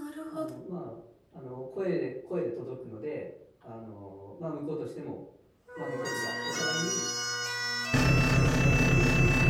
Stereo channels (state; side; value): identical; both; correlation 1.00